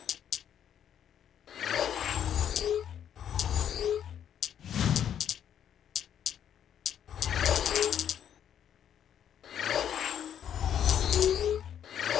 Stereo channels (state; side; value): quieter; right; 9.5 dB